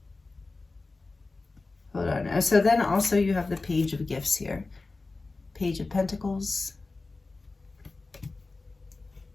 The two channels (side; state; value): right; quieter; 3.6 dB